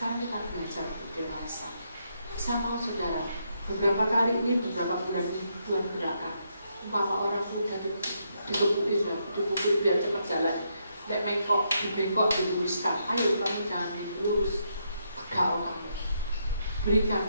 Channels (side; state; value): both; inverted; correlation -0.78